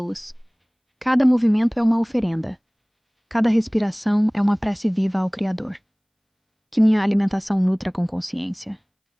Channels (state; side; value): identical; both; correlation 1.00